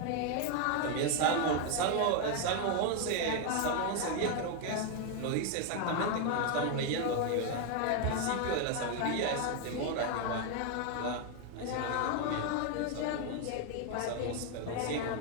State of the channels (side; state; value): both; different; correlation 0.01